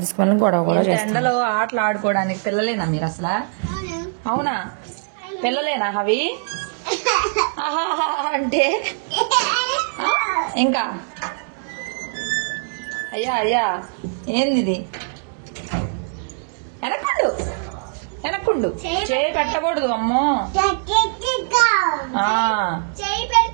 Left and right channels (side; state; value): left; silent; digital silence